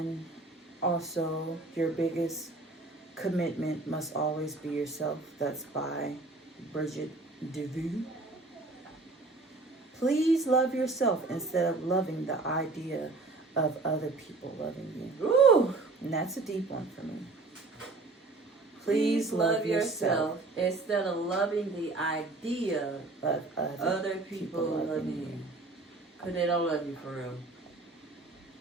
also, your biggest commitment must always be yourself. That's by Bridget DeVue. Please love yourself instead of loving the idea of other people loving you. Ooh. And that's a deep one for me. Please love yourself instead of loving the idea of other people loving you. Because they don't love you for real.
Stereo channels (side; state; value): left; quieter; 3.4 dB